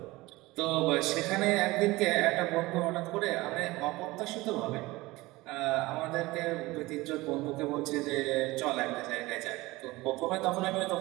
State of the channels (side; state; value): left; quieter; 20.5 dB